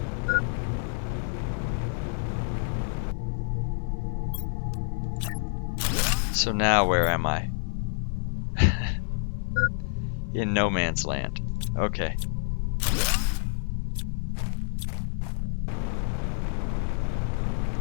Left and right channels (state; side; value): silent; right; 57 dB below the other